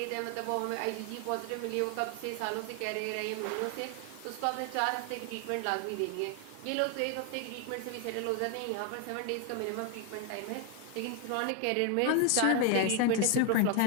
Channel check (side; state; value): both; different; correlation 0.00